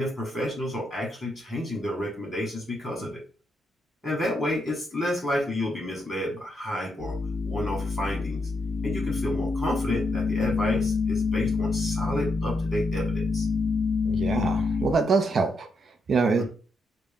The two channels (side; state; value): both; normal; correlation 0.80